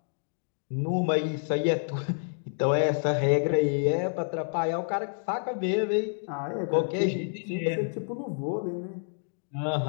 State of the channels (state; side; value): silent; right; digital silence